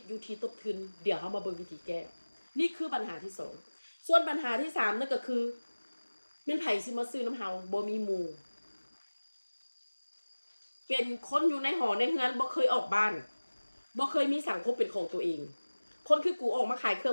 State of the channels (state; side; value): inverted; both; correlation -1.00